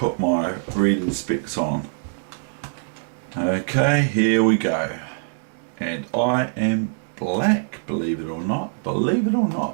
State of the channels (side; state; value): left; silent; digital silence